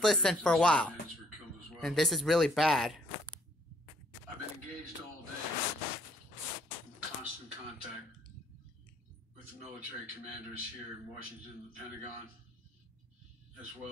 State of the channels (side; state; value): both; normal; correlation 0.63